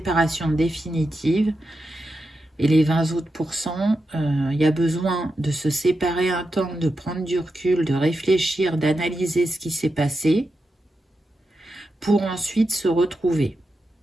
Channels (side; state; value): both; normal; correlation 0.88